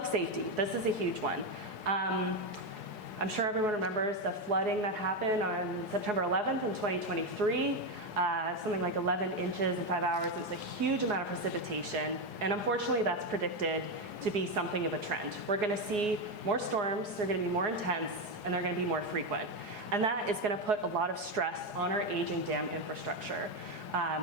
safety, this is a huge one. I'm sure everyone remembers the flooding that happened on September 11th in 2023. Something like 11 inches in 5 hours. It was a huge amount of precipitation, and unfortunately that's predicted to be something of a trend. We're going to see more storms, they're going to be more intense, and they're going to be more frequent. And that is going to put a lot of stress on our aging dam infrastructure.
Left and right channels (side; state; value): left; late; 4.8 ms